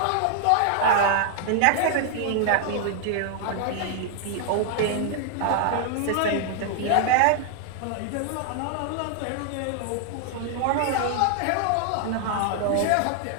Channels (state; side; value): different; both; correlation 0.00